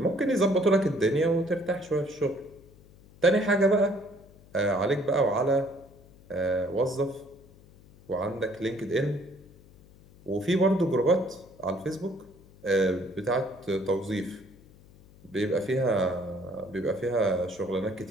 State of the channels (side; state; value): left; noise; hum, 24 dB below the sound